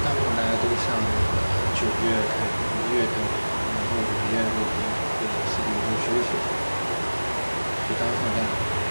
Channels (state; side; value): inverted; both; correlation -1.00